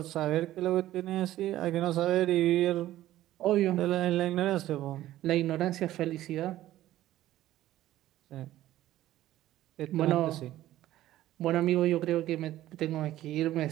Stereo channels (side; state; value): left; quieter; 14.3 dB